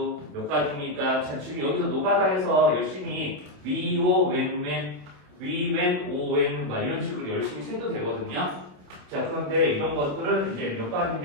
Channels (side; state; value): left; late; 27 ms